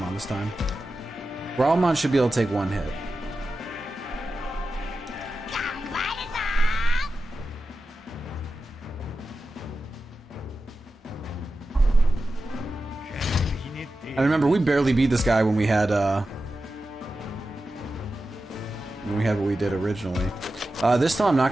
this time. Growlmon should be able to take one hit. I remember we barely beat this guy when we had what we did originally. This time I'm not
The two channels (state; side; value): normal; both; correlation 0.92